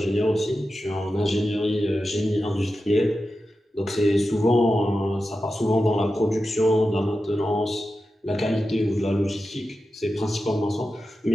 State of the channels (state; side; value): normal; both; correlation 0.92